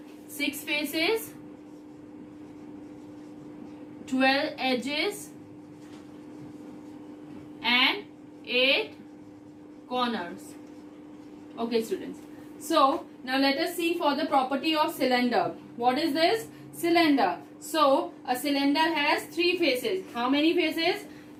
6 faces, 12 edges and 8 corners. Okay, students. So now let us see for the property of cylinder. What is this? Cylinder. So a cylinder has 3 faces. How many faces?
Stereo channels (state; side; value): identical; both; correlation 1.00